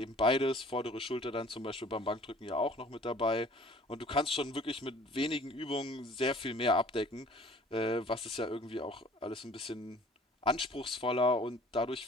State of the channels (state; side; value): normal; both; correlation 0.50